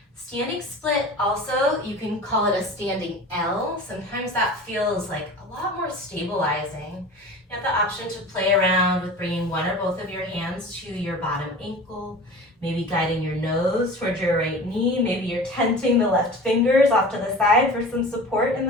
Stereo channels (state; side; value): normal; both; correlation 0.37